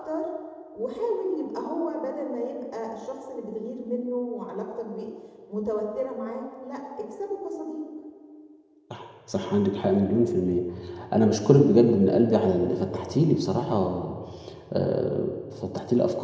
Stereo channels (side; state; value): both; identical; correlation 1.00